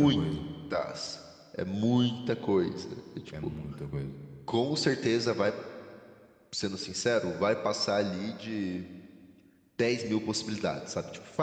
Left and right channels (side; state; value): both; identical; correlation 1.00